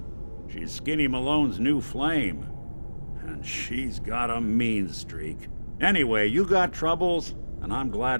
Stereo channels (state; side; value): inverted; both; correlation -1.00